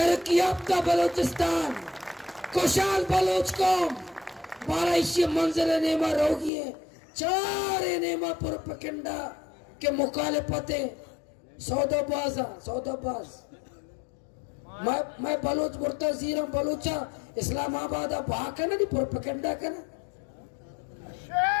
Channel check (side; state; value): right; drops out; at 6.5 s